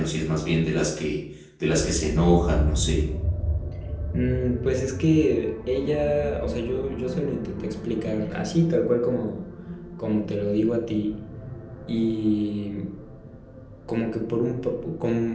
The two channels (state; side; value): identical; both; correlation 1.00